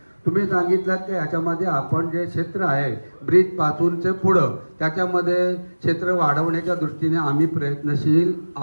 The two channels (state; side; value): inverted; both; correlation -1.00